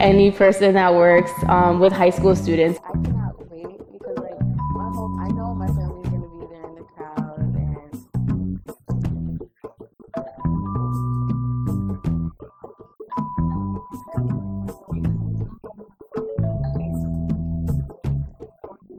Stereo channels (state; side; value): identical; both; correlation 1.00